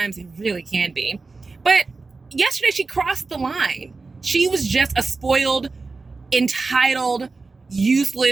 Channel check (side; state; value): left; quieter; 3.9 dB